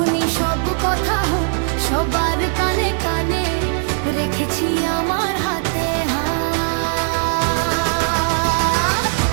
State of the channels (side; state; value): left; silent; 67 dB below the other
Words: সব কথা হোক সবার কানে কানে, রেখেছি আমার হাতে হাত।